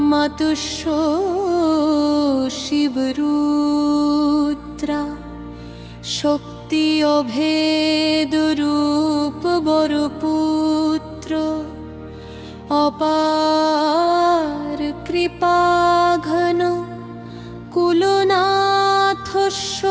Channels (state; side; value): identical; both; correlation 1.00